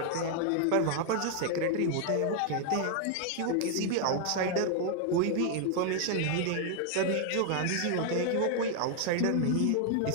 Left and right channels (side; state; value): both; different; correlation 0.00